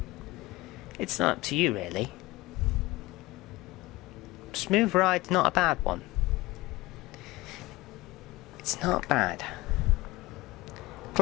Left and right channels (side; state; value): right; quieter; 20.0 dB